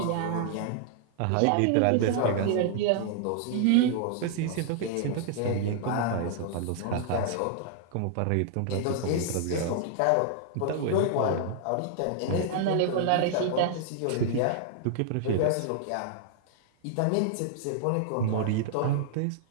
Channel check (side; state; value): both; different; correlation -0.01